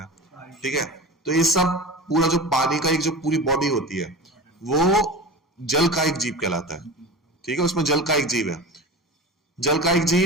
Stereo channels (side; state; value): both; normal; correlation 0.32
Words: है। ठीक है, तो ये सब पूरा जो पानी का एक जो पूरी बॉडी होती है, वो जल का एक जीव कहलाता है। ठीक है, उसमें जल का एक जीव है। जल का एक